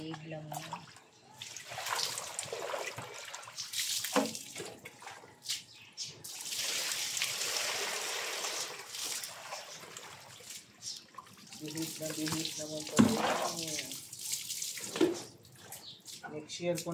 lang yan. Bihib naman pala yan. Next year ko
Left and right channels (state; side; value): identical; both; correlation 1.00